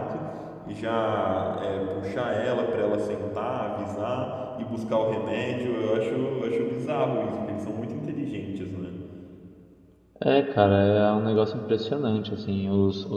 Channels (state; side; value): identical; both; correlation 1.00